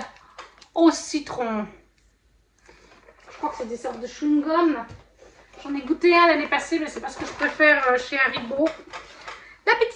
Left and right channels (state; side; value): identical; both; correlation 1.00